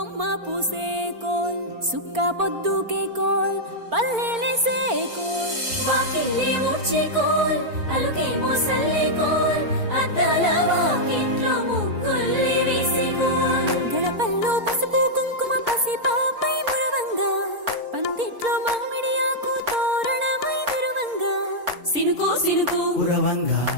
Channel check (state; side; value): late; left; 4.4 ms